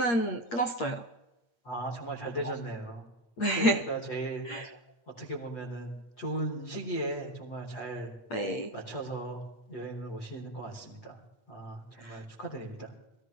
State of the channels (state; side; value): late; right; 8.5 ms